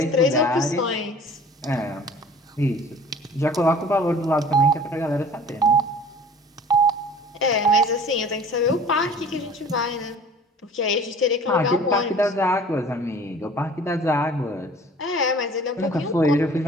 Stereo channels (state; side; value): normal; both; correlation 0.47